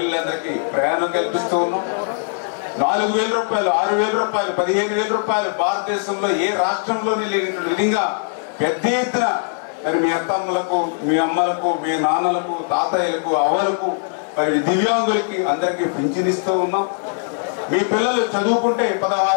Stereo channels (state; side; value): silent; right; 59 dB below the other